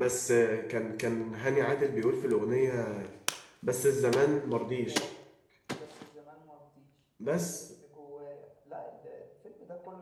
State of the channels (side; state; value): both; identical; correlation 1.00